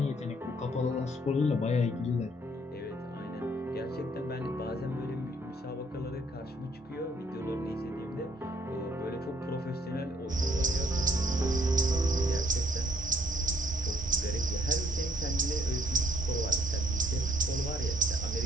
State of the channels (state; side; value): normal; both; correlation 0.65